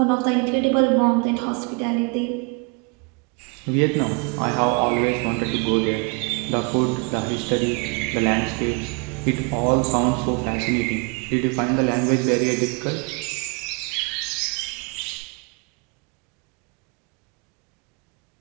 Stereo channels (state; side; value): quieter; left; 32.8 dB